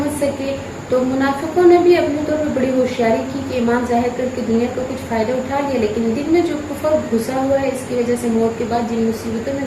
सके। तो मुनाफिकों ने भी अपने तौर पर बड़ी होशियारी की कि ईमान जाहिर करके दुनिया का कुछ फ़ायदा उठा लिया, लेकिन दिल में जो कुफर घुसा हुआ है, इसकी वजह से मौत के बाद जिन मुसीबतों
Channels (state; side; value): identical; both; correlation 1.00